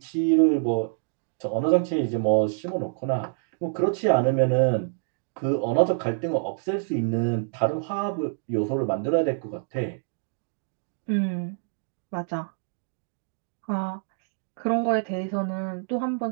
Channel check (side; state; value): left; silent; digital silence